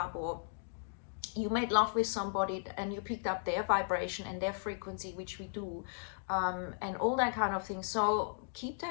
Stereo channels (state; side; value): silent; right; digital silence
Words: or you made love with somebody and you picked up their vibration and their frequency, which we do, and all that kind of thing. So keep